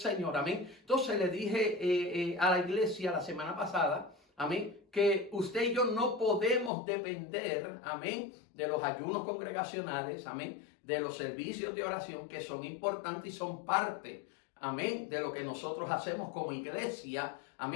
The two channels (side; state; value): right; drops out; at 6.7 s